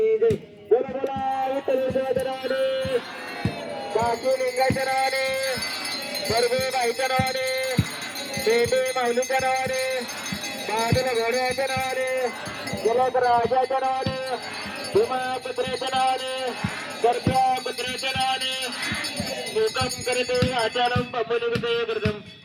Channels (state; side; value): identical; both; correlation 1.00